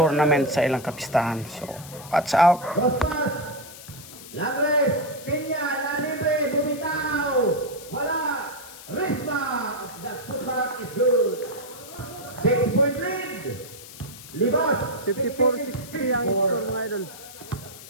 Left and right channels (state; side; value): noise; left; hiss, 16 dB below the sound